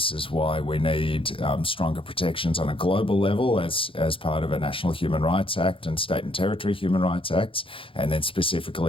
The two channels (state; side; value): late; right; 0.26 ms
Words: is why we need stronger protections on a global level as part of a National Human Rights Act and State and Territory Human Rights Acts, and then